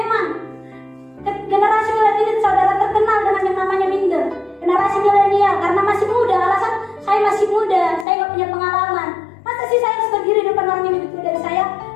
generasi milenial saudara terkenal dengan yang namanya minder. Generasi milenial karena masih muda. Alasan saya masih muda, saya nggak punya pengalaman. Masa sih saya harus berdiri depan orang yang lebih tua dari saya?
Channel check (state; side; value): drops out; right; at 8.1 s